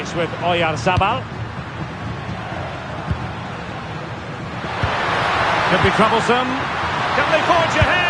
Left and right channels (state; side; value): identical; both; correlation 1.00